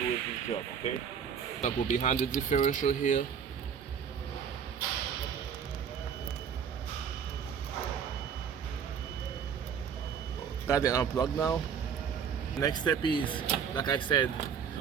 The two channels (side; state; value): left; quieter; 7.4 dB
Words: this job, okay? I'll go behind the differential here. Got it unplugged now. Next step is, like I said,